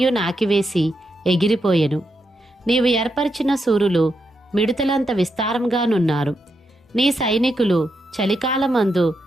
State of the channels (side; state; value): both; normal; correlation 0.83